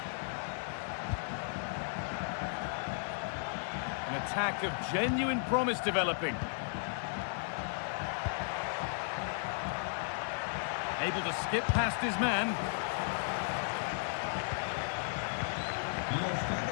An attack of genuine promise developing. Able to skip past his man.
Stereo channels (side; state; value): right; silent; 54 dB below the other